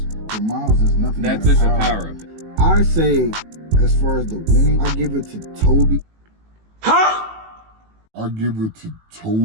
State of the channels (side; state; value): left; late; 18 ms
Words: For Miles, there's nothing. That's just a power up. I say, as far as the winning, I give it to Toby. Huh? I give it to